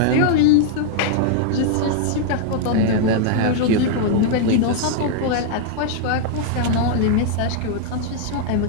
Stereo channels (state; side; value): different; both; correlation 0.00